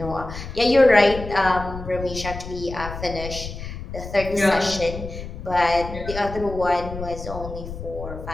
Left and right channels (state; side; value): noise; left; rumble, 10 dB below the sound